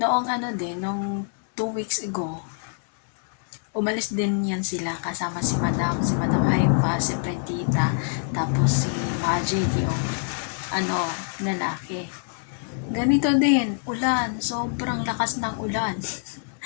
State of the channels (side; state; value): right; silent; digital silence